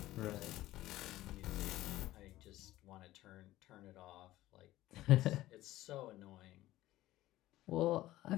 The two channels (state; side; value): quieter; right; 15.9 dB